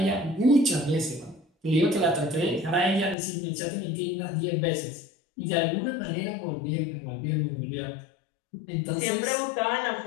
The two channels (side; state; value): right; drops out; at 3.2 s